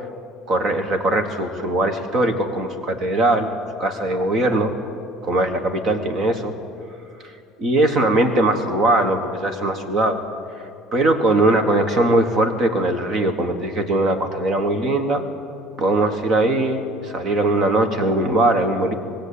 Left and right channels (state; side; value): normal; both; correlation 0.51